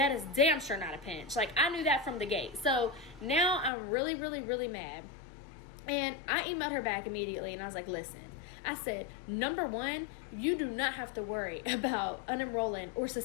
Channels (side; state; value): right; drops out; at 3.7 s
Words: is damn sure not a pinch. Like, I knew that from the gate. So now I'm really, really, really mad. And I emailed her back immediately, and I was like, listen. I said, number one, you do not have to worry about unenrolling or